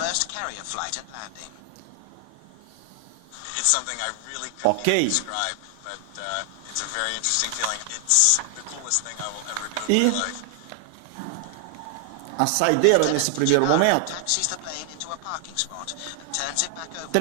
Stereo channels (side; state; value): both; different; correlation 0.00